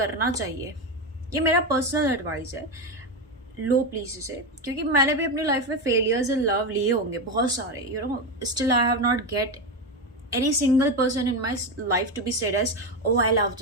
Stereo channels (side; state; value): both; normal; correlation 0.14